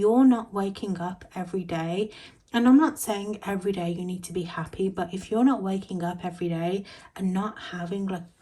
not waking up every day, and I'm not saying every day you need to be happy, but if you're not waking up every day and not having like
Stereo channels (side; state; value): both; identical; correlation 1.00